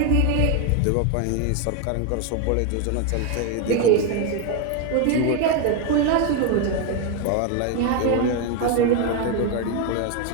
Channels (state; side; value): different; both; correlation 0.01